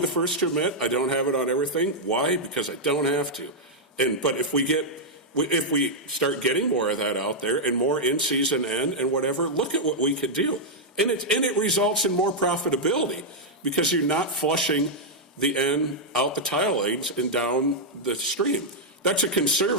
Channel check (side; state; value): both; normal; correlation -0.04